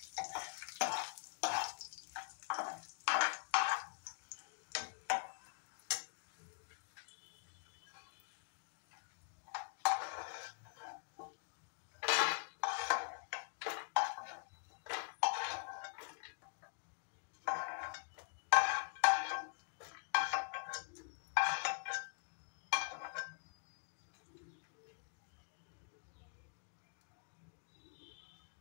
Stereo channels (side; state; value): right; silent; digital silence